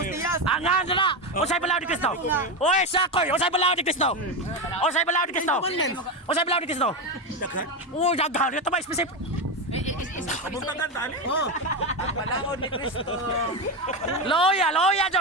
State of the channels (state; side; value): normal; both; correlation 0.14